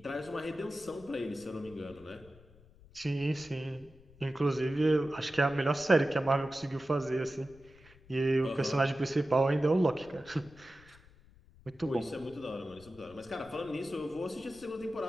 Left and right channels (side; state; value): left; noise; rumble, 24 dB below the sound